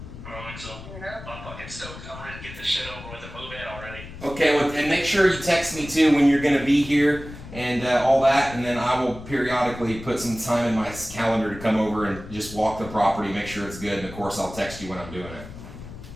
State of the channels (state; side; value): noise; left; rumble, 14 dB below the sound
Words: don't think so. I'm fucking stoked. I'm ready to get this shit over with and move in already. Okay, well, and make sure you text me too when you're going to be here and all that, and then I will periodically put some time in my calendar to come over and just walk the property, make sure it's good, and of course I'll text you when I'm doing it.